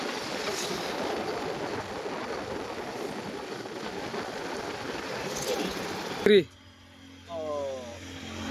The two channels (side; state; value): both; identical; correlation 1.00